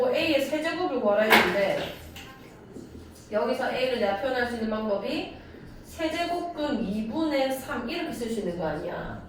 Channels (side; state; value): both; identical; correlation 1.00